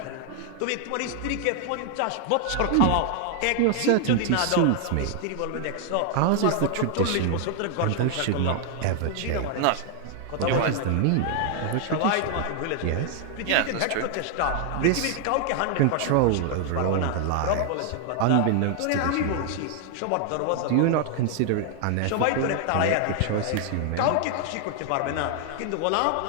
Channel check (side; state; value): both; different; correlation 0.00